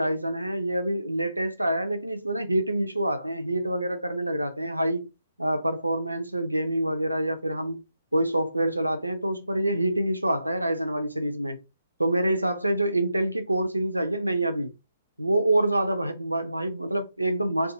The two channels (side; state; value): both; inverted; correlation -0.86